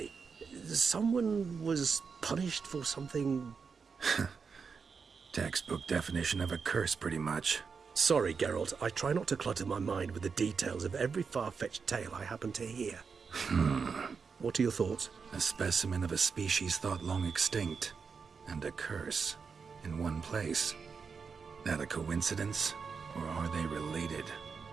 Someone was punished for something... Textbook definition of a curse, pretty much. Sorry, Geralt, I try not to clutter my mind with the details of every far-fetched tale I happen to hear. What are your thoughts? A specimen of a species thought long extinct, and a curse, in one place. That a coincidence, or are they related?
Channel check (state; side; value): quieter; left; 5.5 dB